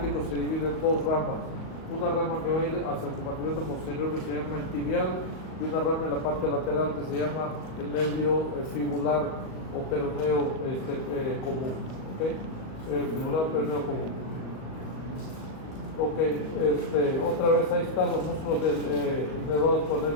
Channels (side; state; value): right; late; 38 ms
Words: se divide en 2 ramas. Una rama que va a ir hacia el compartimento posterior, que se llama el tibial, y una rama en la parte lateral que se llama el nervio fibular o peroneo común. ¿Okay? Fibular o peroneo común. Ok, otra vez ahí están los músculos inervados por el